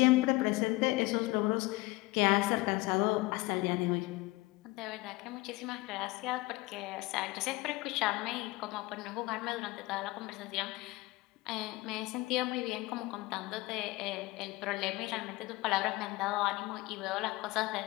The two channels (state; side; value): quieter; right; 21.6 dB